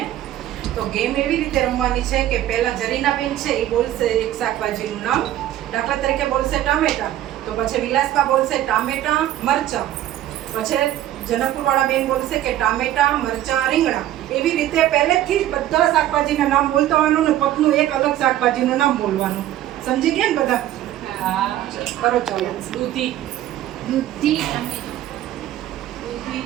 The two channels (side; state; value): left; quieter; 13.0 dB